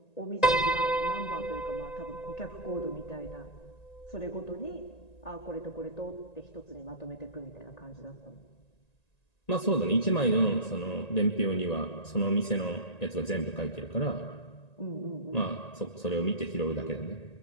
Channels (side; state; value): right; late; 1.9 ms